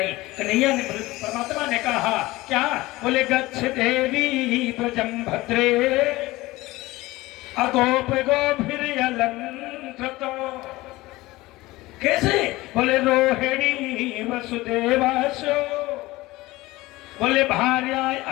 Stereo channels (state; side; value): quieter; right; 19.5 dB